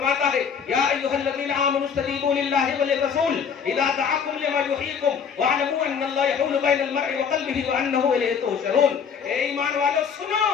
ہے، یا ایھا الذین آمنوا استجیبوا للہ وللرسول اذا دعاکم لما یحییکم واعلموا ان اللہ یحول بین المرء وقلبہ وانہ الیہ تحشرون. اے ایمان والو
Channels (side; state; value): right; quieter; 6.8 dB